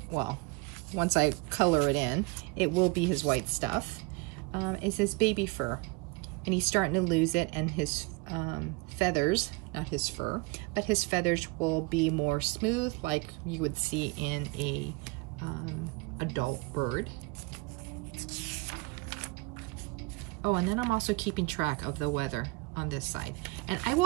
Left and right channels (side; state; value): left; quieter; 26.0 dB